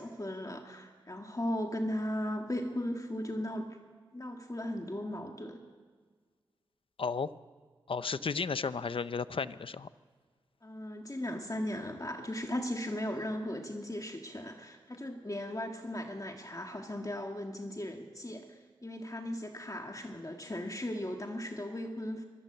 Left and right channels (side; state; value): both; normal; correlation 0.75